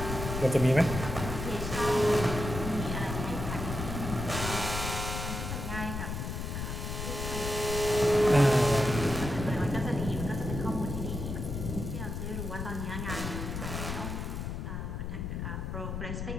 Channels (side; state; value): left; noise; rumble, 4 dB below the sound